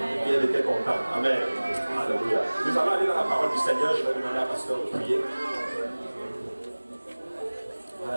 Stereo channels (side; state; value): both; inverted; correlation -1.00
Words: Et elle était contente. Amen. Alléluia. Nous allons aller dans la parole du Seigneur. Je vais demander à pasteur de prier.